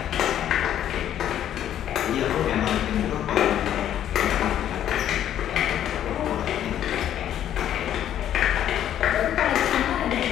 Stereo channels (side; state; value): right; quieter; 10.8 dB